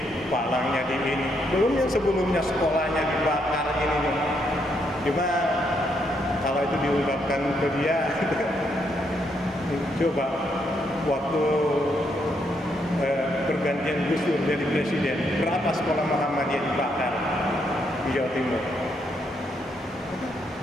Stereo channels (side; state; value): both; normal; correlation 0.76